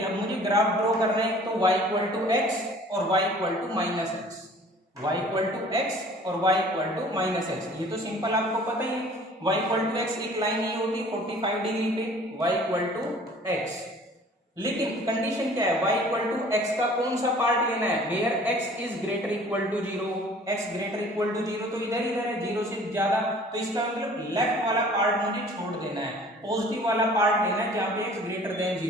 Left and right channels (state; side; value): normal; both; correlation 0.50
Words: अब मुझे ग्राफ ड्रॉ करना है, तो y इक्वल टू एक्स और y equal to minus X, y equal to X और y equal to minus X. ये तो सिंपल आपको पता ही है। y इक्वल टू एक्स एक लाइन ये होती है 45 डिग्री पे, y इक्वल टू एक्स। लेकिन कंडीशन क्या है, y इक्वल टू एक्स का कौन सा पार्ट लेना है, where x is greater equal to 0। x greater equal to 0 तो इधर इधर है 0 से ज्यादा, तो इसका मतलब लेफ्ट वाला पार्ट मुझे छोड़ देना है, पॉजिटिव वाला पार्ट लेना है जहां पे x ग्रेटर देन